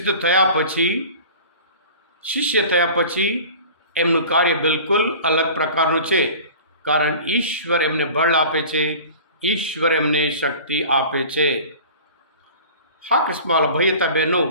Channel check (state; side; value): inverted; both; correlation -0.41